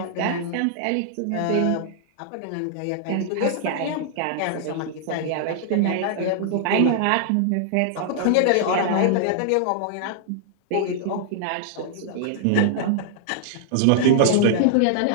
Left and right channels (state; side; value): different; both; correlation -0.01